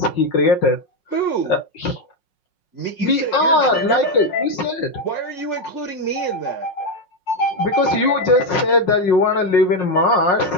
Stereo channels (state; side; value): late; right; 5.5 ms